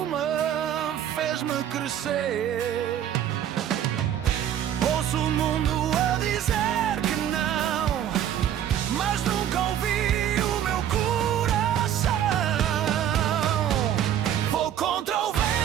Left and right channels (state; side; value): quieter; left; 10.4 dB